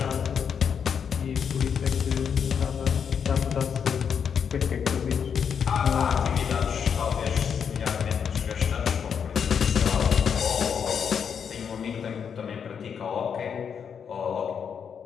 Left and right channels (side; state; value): right; quieter; 7.2 dB